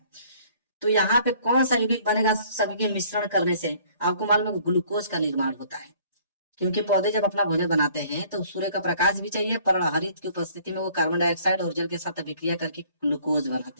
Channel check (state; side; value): inverted; both; correlation -0.57